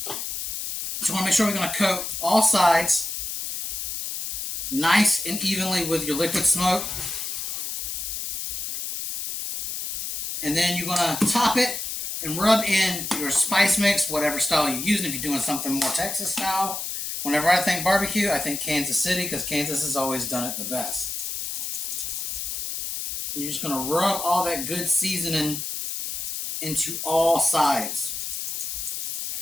So we want to make sure we're going to coat all sides nice and evenly with your liquid smoke. And then you're going to top it and rub in your spice mix, whatever style you're using. If you're doing something more Texas style. Whenever I think barbecue, I think Kansas City, because Kansas has always done it the best. And you're just going to rub all that good seasoning into all sides.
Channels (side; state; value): left; noise; hiss, 4 dB below the sound